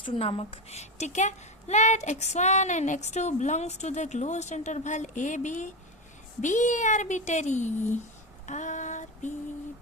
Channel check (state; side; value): normal; both; correlation 0.16